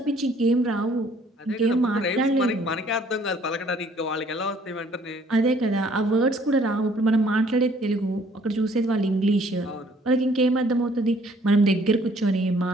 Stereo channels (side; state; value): both; normal; correlation 0.60